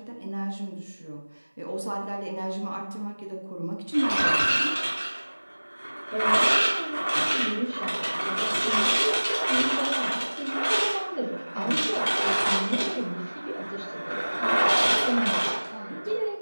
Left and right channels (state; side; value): inverted; both; correlation -1.00